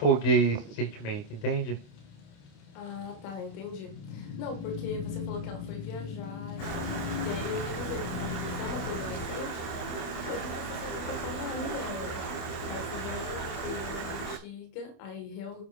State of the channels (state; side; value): late; right; 28 ms